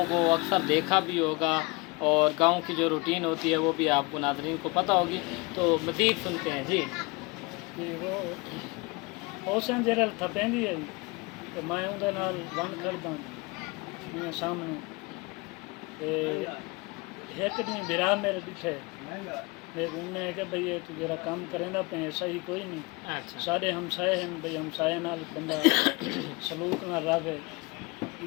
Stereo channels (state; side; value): quieter; right; 26.7 dB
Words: کو اکثر دیکھا بھی ہوگا اور گاؤں کی جو روٹین ہوتی ہے وہ بھی آپ کو ناظرین کو پتہ ہوگی تو مزید سنتے ہیں جی کہ وہ پھوسیاں جرل تھپیندی ہے تے میں اون دے نال ون کھڑدا میرے سامنے تے ایک دن برا میرے ڈٹھے میں انہیں کہ بھئی یہ تو جرا کام کریندا پے صحیح کوئی نہیں اچھا سارے ہمسائے ہیں بھئی ہمسائے نال بندہ سلوک نہ رہے